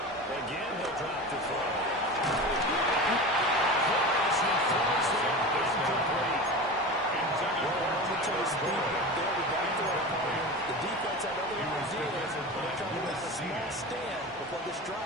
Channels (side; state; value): both; normal; correlation 0.29